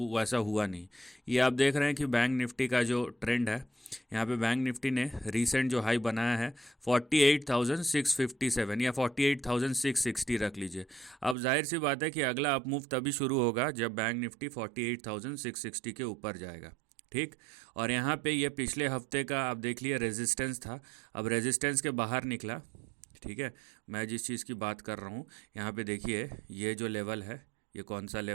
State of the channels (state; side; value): drops out; left; at 11.4 s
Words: वैसा हुआ नहीं। ये आप देख रहे हैं कि बैंक निफ्टी का जो ट्रेंड है, यहाँ पे बैंक निफ्टी ने रीसेंट जो हाई बनाया है 48,657 या 48,660 रख लीजिए। अब जाहिर सी बात है कि अगला अप मूव तभी शुरू होगा जब बैंक निफ्टी 48,660 के ऊपर जाएगा, ठीक। और यहाँ पे ये पिछले हफ्ते का आप देख लिए रेजिस्टेंस था, अब रेजिस्टेंस के बाहर निकला, ठीक है। मैं जिस चीज़ की बात कर रहा हूँ, यहाँ पे देखिए ये जो लेवल है, ये कौन सा